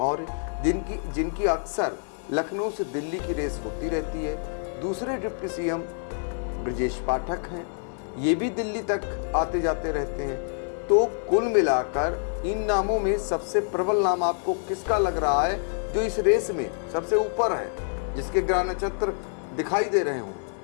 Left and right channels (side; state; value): right; silent; 56 dB below the other